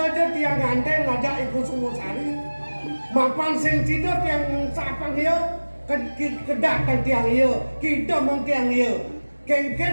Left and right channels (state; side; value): inverted; both; correlation -1.00